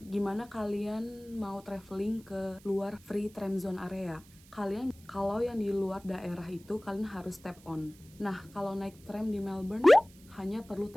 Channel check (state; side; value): noise; right; hiss, 25 dB below the sound